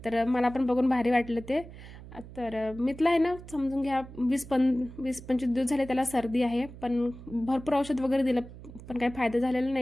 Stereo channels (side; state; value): right; noise; hum, 15 dB below the sound